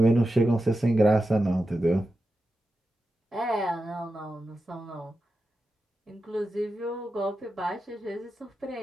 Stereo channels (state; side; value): normal; both; correlation 0.91